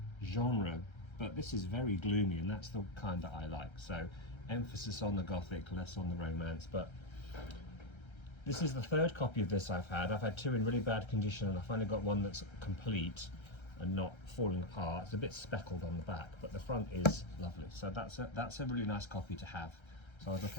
genre, but this is very gloomy, and that's the kind that I like. So emphasis on the Gothic, less on the romance. But this is the 3rd copy of this I've had. I've had 2 in really bad condition, and I finally got one that's complete and not falling apart. It's a bit speckled on the back, but the front is lovely. So that's a really nice copy to have. So I'll look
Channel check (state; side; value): late; right; 1.3 ms